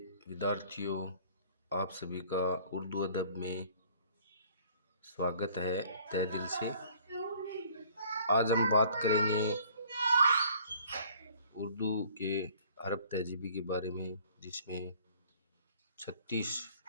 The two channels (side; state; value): both; inverted; correlation -0.55